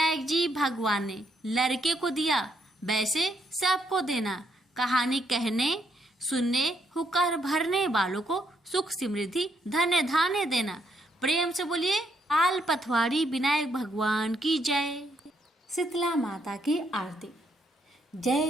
जी भगवान ने लड़के को दिया, वैसे सबको देना। कहानी कहने सुनने हुक्कर भरने वालों को सुख समृद्धि धन्य धान्य देना। प्रेम से बोलिए, पाल पथवाड़ी विनायक भगवान की जय। शीतला माता की आरती।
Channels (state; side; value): normal; both; correlation 0.75